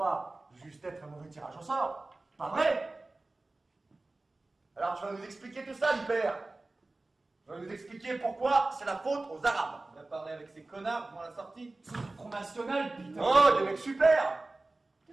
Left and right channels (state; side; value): quieter; left; 3.1 dB